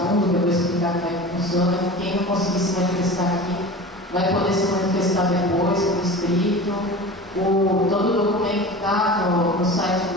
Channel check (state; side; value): normal; both; correlation 0.34